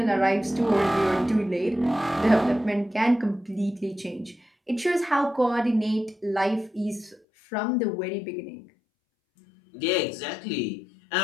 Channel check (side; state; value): right; drops out; at 7.2 s